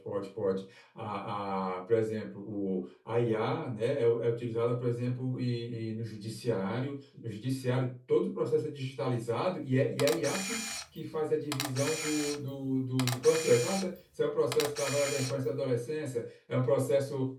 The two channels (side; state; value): both; identical; correlation 1.00